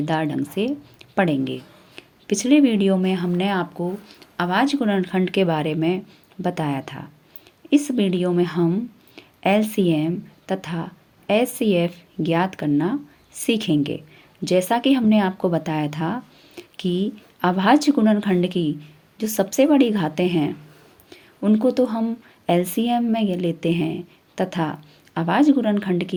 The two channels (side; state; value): both; identical; correlation 1.00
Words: ढंग से पढ़ेंगे। पिछले वीडियो में हमने आपको आवाज़ गुणनखंड के बारे में बताया था। इस वीडियो में हम एलसीएम तथा एचसीएफ ज्ञात करना सीखेंगे। जैसा कि हमने आपको बताया था कि अभाज्य गुणनखंड की जो सबसे बड़ी घातें हैं उनको तो हम एलसीएम में ये लेते हैं तथा अभाज्य गुणनखंड